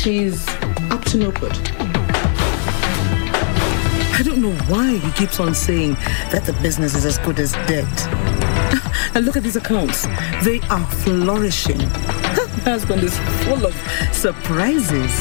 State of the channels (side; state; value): right; silent; digital silence